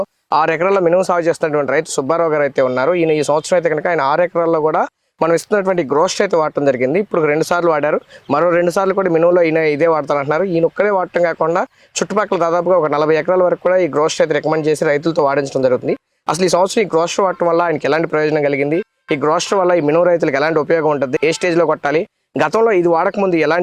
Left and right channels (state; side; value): identical; both; correlation 1.00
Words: 6 ఎకరాల మినుము సాగు చేస్తున్నటువంటి రైతు సుబ్బారావు గారు అయితే ఉన్నారు. ఈయన ఈ సంవత్సరం అయితే కనుక ఆయన 6 ఎకరాల్లో కూడా మనం ఇస్తున్నటువంటి గ్రోస్ట్ అయితే వాడటం జరిగింది. ఇప్పుడు 2 సార్లు వాడారు. మరో 2 సార్లు కూడా మినుములో ఈయన ఇదే వాడతానంటున్నారు. ఈయన ఒక్కడే వాడటం కాకుండా చుట్టుపక్కల దాదాపుగా ఒక 40 ఎకరాల వరకు కూడా ఈ గ్రోస్ట్ అయితే రికమెండ్ చేసి రైతులతో వాడించడం జరుగుతుంది. అసలు ఈ సంవత్సరం ఈ గ్రోస్ట్ వాడటం వల్ల ఆయనకి ఎలాంటి ప్రయోజనం కలిగింది, ఈ గ్రోస్ట్ వల్ల ఈ మినుము రైతులకు ఎలాంటి ఉపయోగం ఉంటుంది, ఏ స్టేజ్లో కొట్టాలి, గతంలో ఇది వాడకముందు